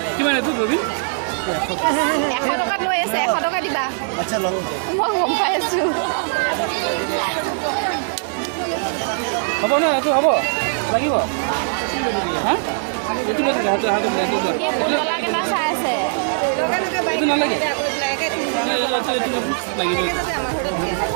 কিমান এইটো ৰবি 100 টকাত লৈ আছে 100 টকা দিবা মই গম পাই আছোঁ হ'ব ন এইটো হ'ব লাগিব হা এইটো পুতলা কেইটা চাই আছে এইটো নালাগে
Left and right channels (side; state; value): left; silent; digital silence